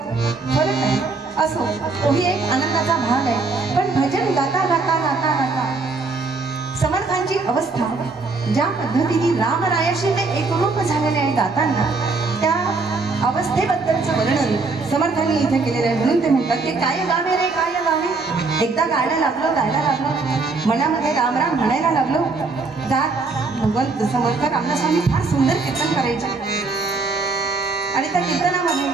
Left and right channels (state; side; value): quieter; left; 3.9 dB